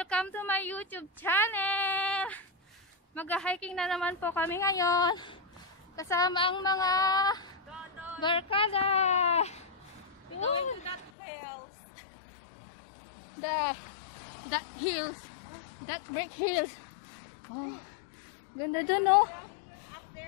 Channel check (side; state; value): right; drops out; at 11.1 s